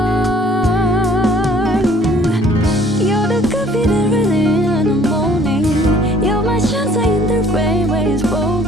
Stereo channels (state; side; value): normal; both; correlation 0.57